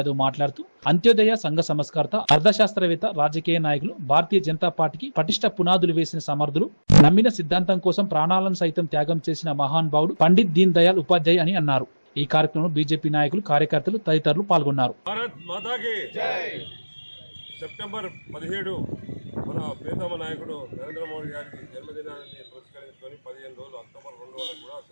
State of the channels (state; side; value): inverted; both; correlation -1.00